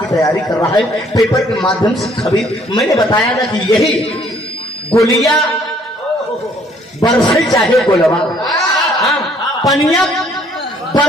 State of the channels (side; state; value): both; normal; correlation 0.62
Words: तैयारी कर रहा है पेपर के माध्यम से खबर मैंने बताया ना कि यही गोलियां बरसे चाहे गोलवा पनिया